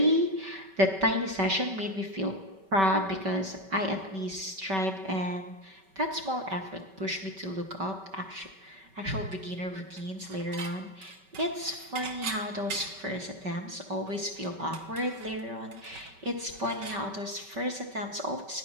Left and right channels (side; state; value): left; late; 5.2 ms